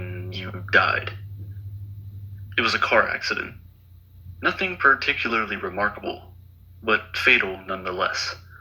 you died. It was a car accident. Nothing particularly remarkable, but fatal nonetheless.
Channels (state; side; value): identical; both; correlation 1.00